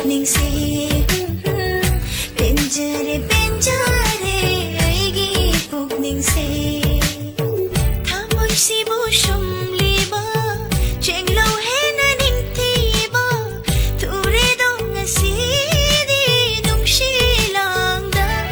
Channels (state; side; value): identical; both; correlation 1.00